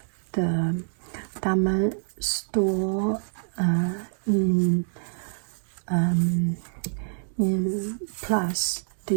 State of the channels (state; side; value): silent; left; digital silence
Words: the Dammann store in Place